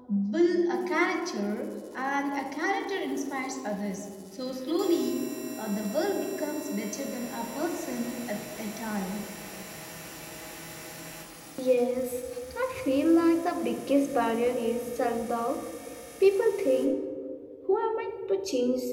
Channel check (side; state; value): both; identical; correlation 1.00